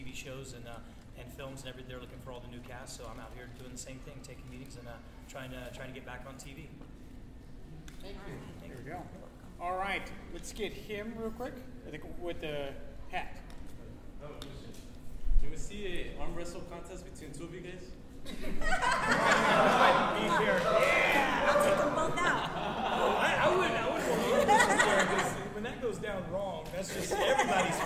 shows and films and everything, they're looking for all the new casts. So I'm out here doing the same thing, taking meetings and trying to get back on TV. Thank you. There we go. All right, let's get him real quick. I think with the hat. Oh, can we see an arm wrestle contest between 2 of you guys? I'll take them both out. I would want to because when that goes down wrong, that's just everybody's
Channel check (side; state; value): both; identical; correlation 1.00